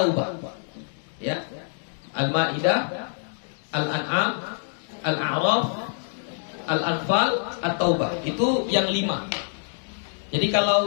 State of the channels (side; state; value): right; silent; digital silence